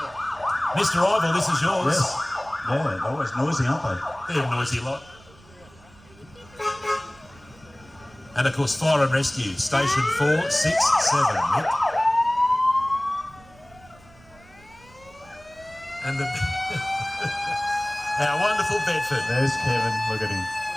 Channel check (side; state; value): right; noise; rumble, 25 dB below the sound